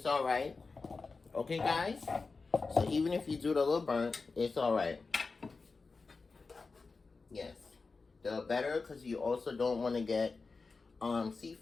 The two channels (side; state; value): right; quieter; 4.2 dB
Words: all right. Okay, guys. So even if you do it a little burnt, it's all right. Yes, the better, because you also don't want to get